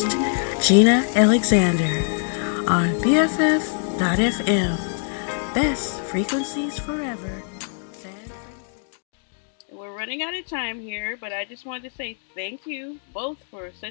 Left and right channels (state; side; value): silent; right; digital silence